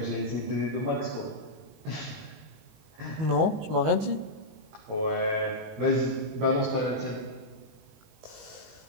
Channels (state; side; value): late; left; 19 ms